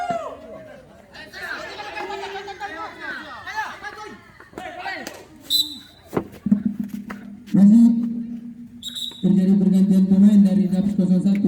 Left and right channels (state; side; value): identical; both; correlation 1.00